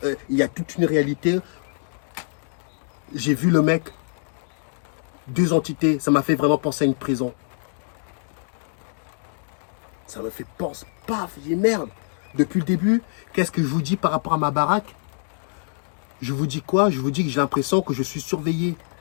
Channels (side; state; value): right; silent; 62 dB below the other